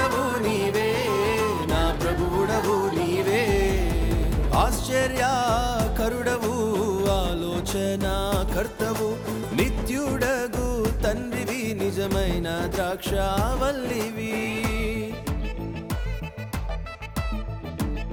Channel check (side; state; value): both; identical; correlation 1.00